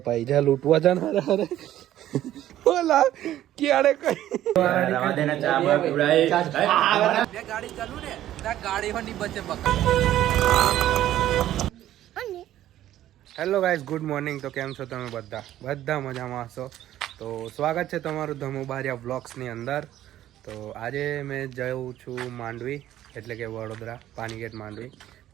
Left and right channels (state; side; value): quieter; left; 12.9 dB